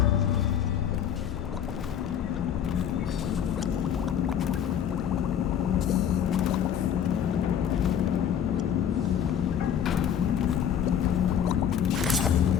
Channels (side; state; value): right; quieter; 8.9 dB